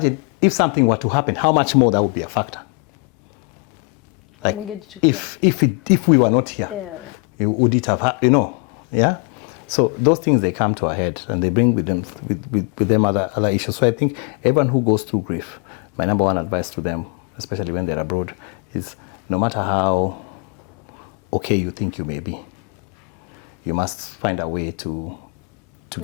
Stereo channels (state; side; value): quieter; right; 31.8 dB